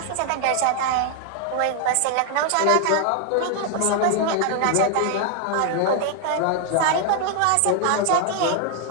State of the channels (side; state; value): both; different; correlation 0.00